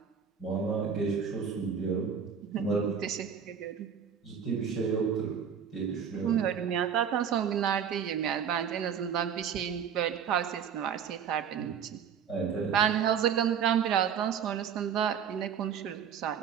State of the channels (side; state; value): left; quieter; 7.7 dB